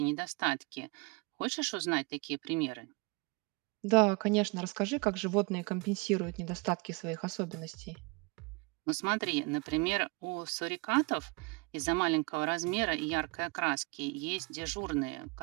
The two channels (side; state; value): left; quieter; 28.5 dB